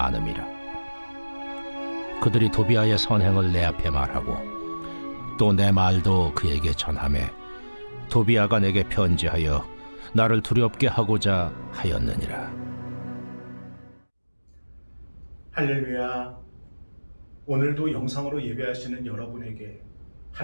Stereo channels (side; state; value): both; inverted; correlation -1.00